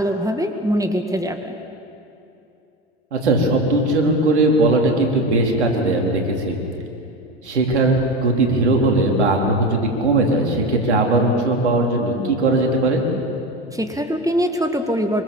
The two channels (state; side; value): normal; both; correlation 0.23